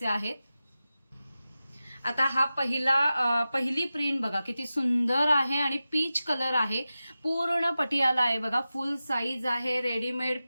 आहेत। आता हा पहिली प्रिंट बघा किती सुंदर आहे आणि पीच कलर आहे। पूर्ण पटियाला आहे बघा, फुल साईज आहे। रेडीमेड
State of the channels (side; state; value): both; inverted; correlation -0.94